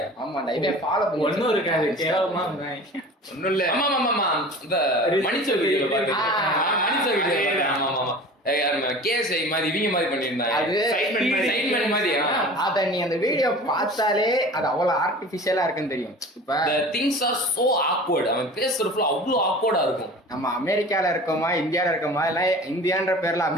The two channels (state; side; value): normal; both; correlation 0.40